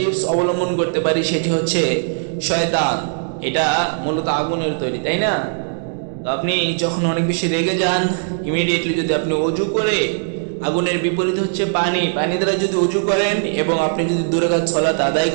অবলম্বন করতে পারি সেটি হচ্ছে শয়তান। এটা মূলত আগুনের তৈরি, তাই না? তো আপনি যখন অনেক বেশি রেগে যান, ইমিডিয়েটলি যদি আপনি ওযু করে, আগুনের বিপরীত হচ্ছে পানি, পানি দ্বারা যদি ওযু করেন এবং আপনি যদি 2 রাকাত সালাত আদায়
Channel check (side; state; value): left; silent; digital silence